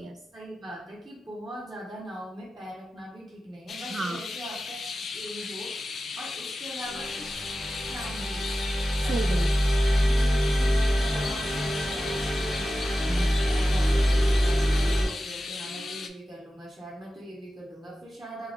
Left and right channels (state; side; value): normal; both; correlation 0.94